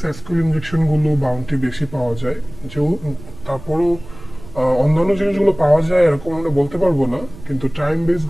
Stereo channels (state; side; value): noise; right; rumble, 17 dB below the sound